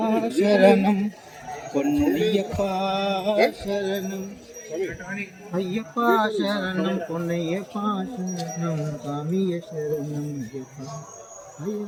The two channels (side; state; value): both; identical; correlation 1.00